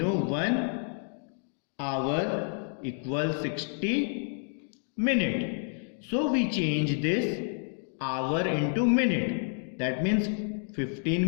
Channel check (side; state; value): right; silent; 58 dB below the other